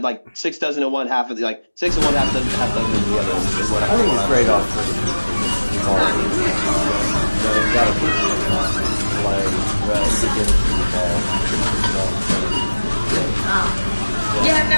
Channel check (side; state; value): both; inverted; correlation -1.00